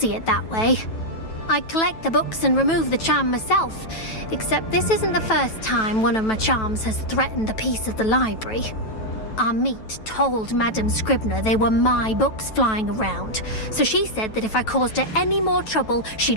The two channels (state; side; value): late; right; 9.2 ms